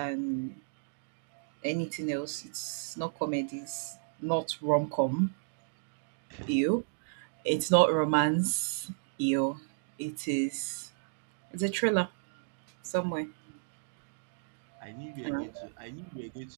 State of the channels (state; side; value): silent; left; digital silence